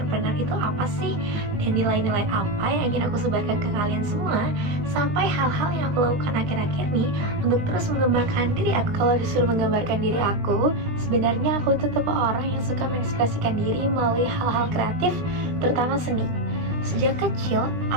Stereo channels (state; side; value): late; left; 19 ms